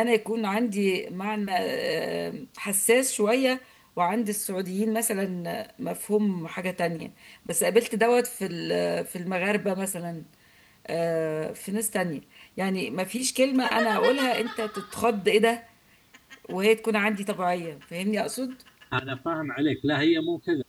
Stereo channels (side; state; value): both; identical; correlation 1.00